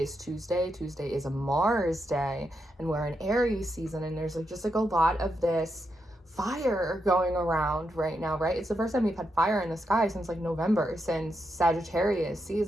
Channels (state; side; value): normal; both; correlation 0.84